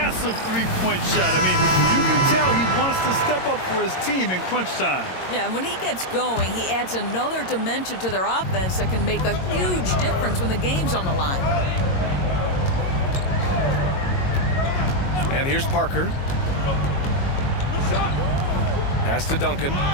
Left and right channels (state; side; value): late; right; 22 ms